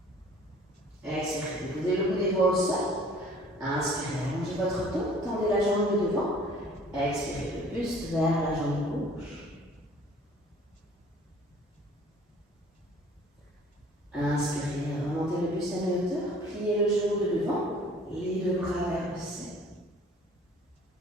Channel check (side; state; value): both; normal; correlation 0.52